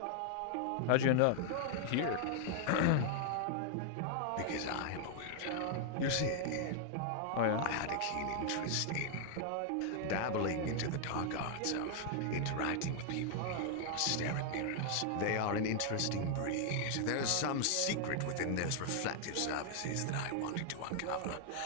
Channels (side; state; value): both; different; correlation 0.00